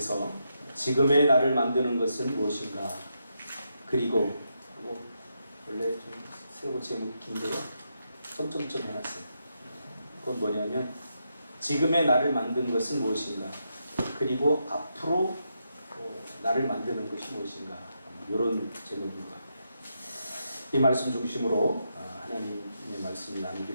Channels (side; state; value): both; inverted; correlation -0.82